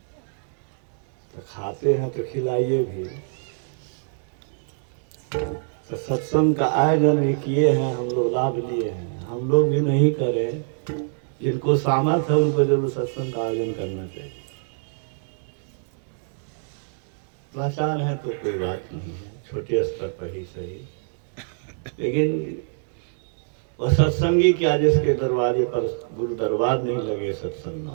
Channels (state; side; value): silent; left; digital silence